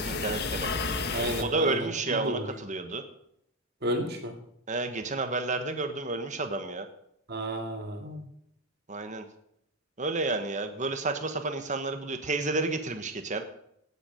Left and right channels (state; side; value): normal; both; correlation 0.09